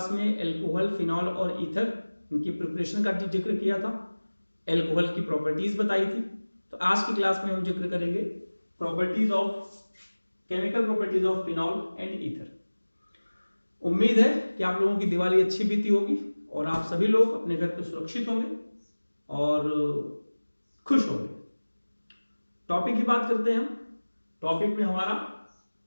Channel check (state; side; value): inverted; both; correlation -1.00